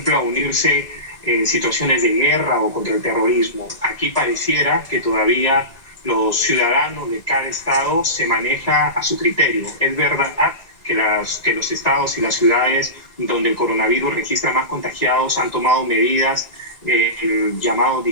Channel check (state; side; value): late; right; 1.9 ms